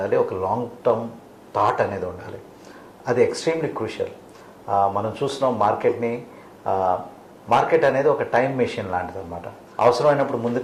ఒక లాంగ్ టర్మ్ థాట్ అనేది ఉండాలి. అది ఎక్స్ట్రీమ్లీ క్రూషియల్. మనం చూస్తున్నాం మార్కెట్ అనేది ఒక టైం మెషిన్ లాంటిది అనమాట. అవసరమైనప్పుడు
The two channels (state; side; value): identical; both; correlation 1.00